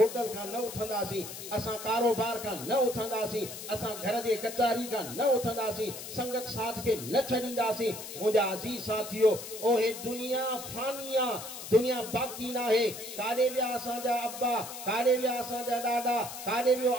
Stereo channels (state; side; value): noise; left; hiss, 10 dB below the sound